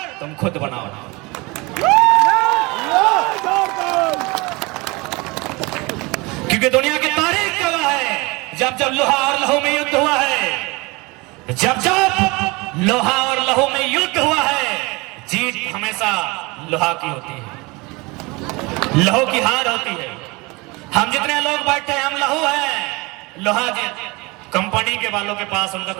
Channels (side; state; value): left; quieter; 25.2 dB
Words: तुम खुद बनाओ। क्योंकि दुनिया की तारीख गवाह है, जब जब लोहा और लहू में युद्ध हुआ है, जब जब लोहा और लहू में युद्ध हुआ है, जीत हमेशा लोहा की होती है, लहू की हार होती है। हम जितने लोग बैठे हैं, हम लहू हैं, लोहा जी कंपनी के वालों के पास, उनका